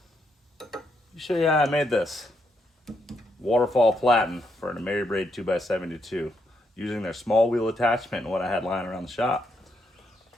let me show you how I made this Waterfall Platen for an Ameribraid 2x72 using their small wheel attachment and what I had lying around the shop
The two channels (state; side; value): normal; both; correlation 0.78